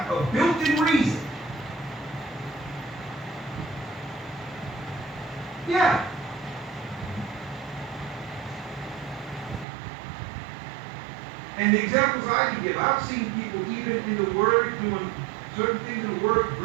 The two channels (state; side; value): drops out; left; at 9.7 s